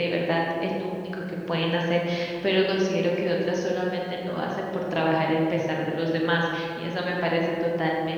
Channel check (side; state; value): both; identical; correlation 1.00